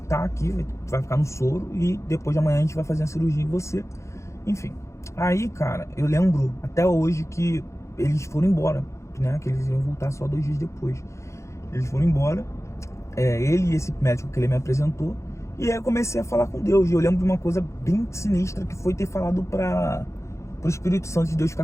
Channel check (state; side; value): late; right; 0.14 ms